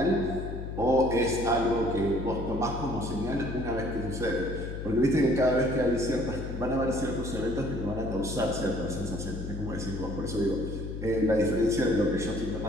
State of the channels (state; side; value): noise; left; hum, 7 dB below the sound